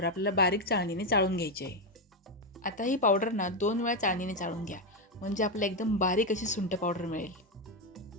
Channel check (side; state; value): both; normal; correlation 0.07